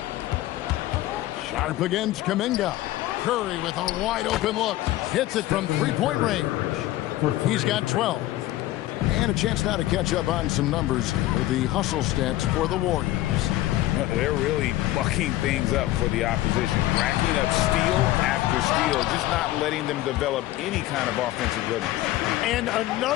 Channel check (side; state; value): right; quieter; 15.7 dB